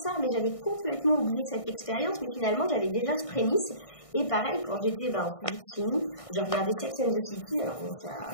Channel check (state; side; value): late; right; 1.6 ms